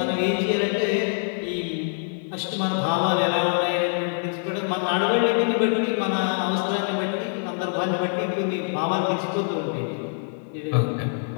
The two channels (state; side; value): silent; right; 62 dB below the other